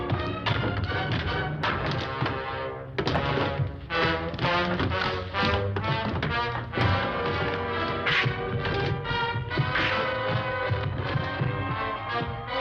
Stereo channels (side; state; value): both; identical; correlation 1.00